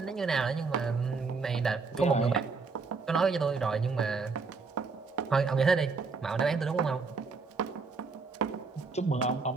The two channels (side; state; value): left; quieter; 4.5 dB